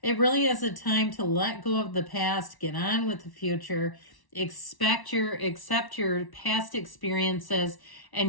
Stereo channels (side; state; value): right; late; 1.1 ms